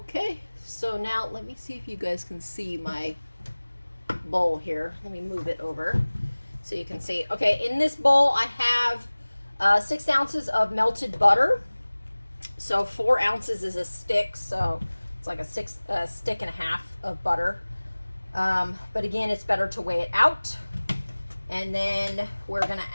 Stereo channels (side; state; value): both; inverted; correlation -1.00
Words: so now let me see if you guys can see my bowl here. Let me move it over so you can see. Okay, in this bowl I have 6 ounces of melted butter. So 4 ounces is a stick, so it's like a stick and a half of butter. But again, it's better to weigh it out. And then we're going